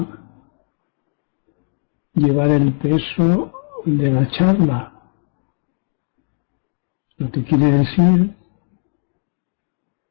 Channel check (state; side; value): silent; right; 59 dB below the other